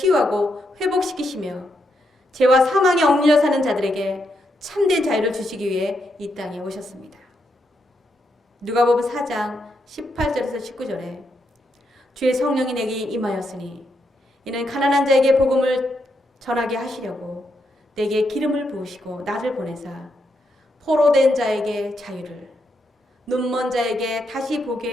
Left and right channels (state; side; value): normal; both; correlation 0.80